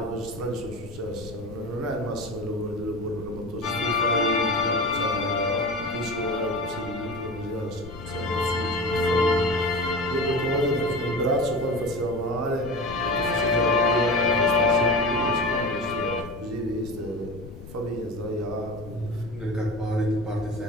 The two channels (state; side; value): noise; left; rumble, 15 dB below the sound